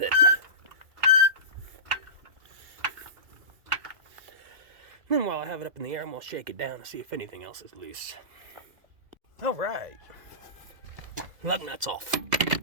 Then while I have it up in the air, I'm going to shake it down and see if anything else is loose. Alright. Lug nuts off.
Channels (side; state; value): left; late; 1.9 ms